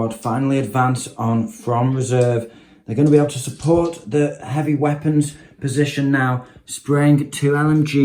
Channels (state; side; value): identical; both; correlation 1.00